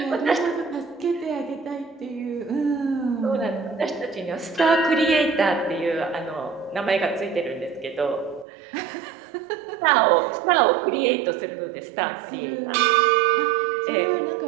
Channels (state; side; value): drops out; left; at 8.5 s